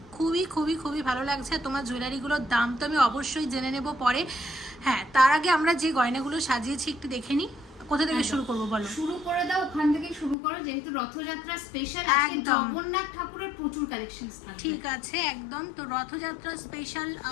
খুবই খুবই খুবই ভালো লাগছে। তোমার জুয়েলারিগুলোর দাম তো আমি অবশ্যই জেনে নেব পরে। হ্যাঁ, তার আগে আমরা যে গয়নাগুলো সাজিয়েছি একটু দেখে নিই। কোথা থেকে শুরু করবো বলো? শুরু করে দাও, ওখান থেকে শুরু করো, যেহেতু রথযাত্রা স্পেশাল। একদম, জগন্নাথ ঠাকুরের প্রচুর কালেকশনস থাকবে। ঠিক আছে, একদম। তো রথযাত্রা স্পেশাল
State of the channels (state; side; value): drops out; right; at 10.4 s